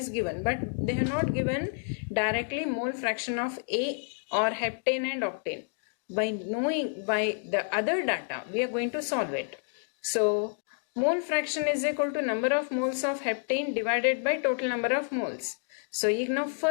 given, but they have not given directly mole fraction of A or heptane and octane. By knowing by the other data, we are going to solve it. So mole fraction is equal to number of moles of heptane divided by total number of moles. So ಈಗ ನಾವು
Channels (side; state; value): right; silent; 58 dB below the other